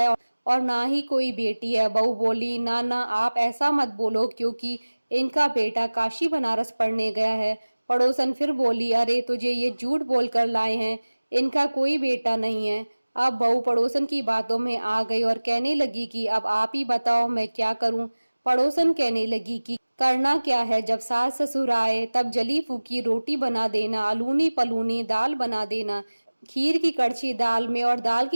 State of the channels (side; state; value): both; inverted; correlation -1.00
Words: और ना ही कोई बेटी है। बहू बोली, ना ना आप ऐसा मत बोलो, क्योंकि इनका बेटा काशी बनारस पढ़ने गया है। पड़ोसन फिर बोली, अरे तुझे ये झूठ बोलकर लाए हैं, इनका कोई बेटा नहीं है। अब बहू पड़ोसन की बातों में आ गई और कहने लगी कि अब आप ही बताओ मैं क्या करूं। पड़ोसन कहने लगी कि करना क्या है, जब सास ससुर आए तब जली फूकी रोटी बना देना, अलूनी पलूनी दाल बना देना, खीर की कड़छी दाल में और दाल